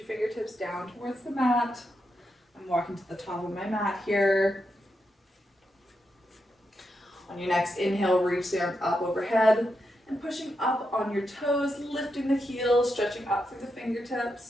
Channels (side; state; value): both; normal; correlation 0.85